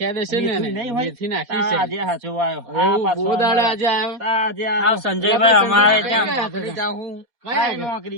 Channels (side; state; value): left; late; 4.2 ms